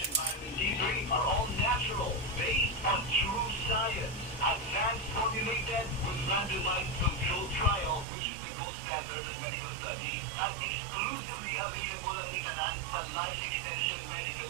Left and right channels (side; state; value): left; drops out; at 8.1 s